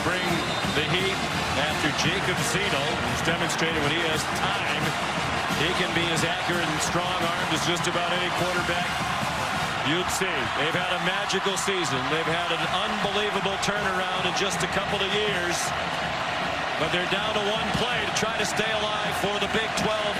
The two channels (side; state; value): both; identical; correlation 1.00